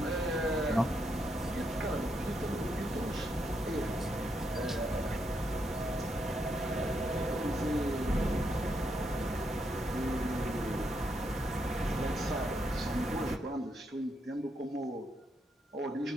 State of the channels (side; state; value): both; normal; correlation 0.79